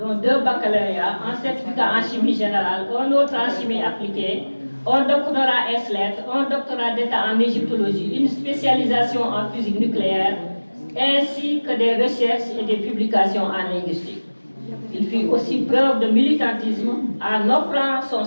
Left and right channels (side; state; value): both; inverted; correlation -1.00